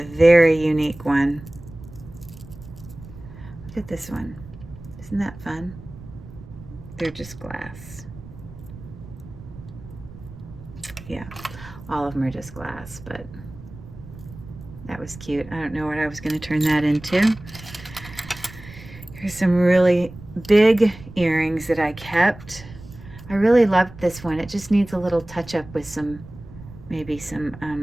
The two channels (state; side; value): noise; right; rumble, 17 dB below the sound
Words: very unique one. Look at this one. Isn't that fun? They're just glass. Yeah, all of them are just glass, but that was cute. I don't know what I was going to turn that into. Here's some really big earrings that I kept. I really loved this one. It just needs a little touch up with some, maybe